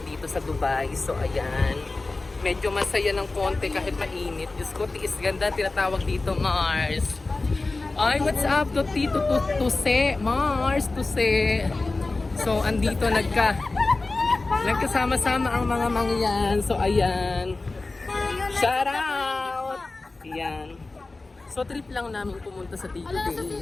dito sa Dubai. So, ayan. Medyo masaya ng konti kahit mainit. Diyos ko, tiis ganda. Tinatawag dito, Mars. Ay, what's up to Tito Tuse? Mars, Tuse. So, andito nagkasama-sama ang mga mangyan. So, ayan. Shout out! Yan. So trip lang namin pumunta sa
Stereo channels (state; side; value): quieter; right; 3.4 dB